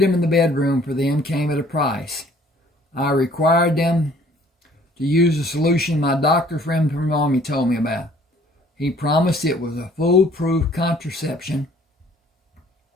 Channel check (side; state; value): both; normal; correlation 0.57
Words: in the bedroom for them came at a price. I required them to use a solution my doctor friend from Army told me about. He promised it was a foolproof contraception.